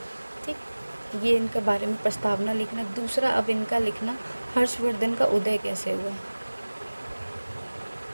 ठीक, ये इनके बारे में प्रस्तावना लिखना। दूसरा अब इनका लिखना, हर्षवर्धन का उदय कैसे हुआ।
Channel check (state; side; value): inverted; both; correlation -1.00